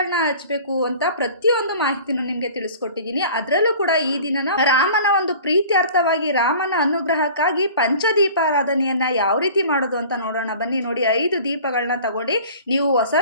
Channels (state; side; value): inverted; both; correlation -0.45